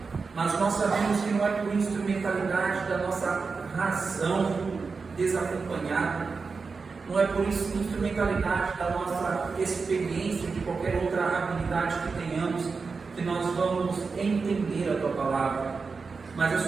Mas nós sabemos que não é por instrumentalidade da nossa razão desacompanhada, não é por instrumentalidade da nossa experiência, de qualquer outra habilidade que tenhamos, que nós vamos entender a tua palavra, mas é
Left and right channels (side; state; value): left; quieter; 4.7 dB